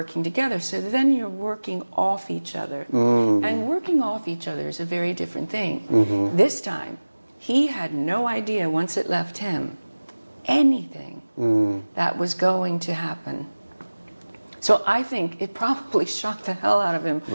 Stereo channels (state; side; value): inverted; both; correlation -1.00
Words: together. So then you're working off each other. And working off each other is a very different thing. This time, he had no idea once it left him anything that was going to happen. So I think it probably shocked the hell out of him